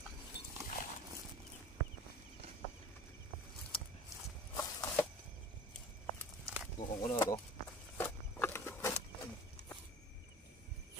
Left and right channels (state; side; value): normal; both; correlation 0.41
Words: Bukong ko na ito.